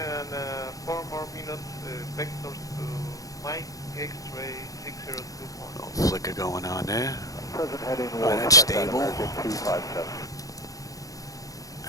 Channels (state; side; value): late; right; 0.17 ms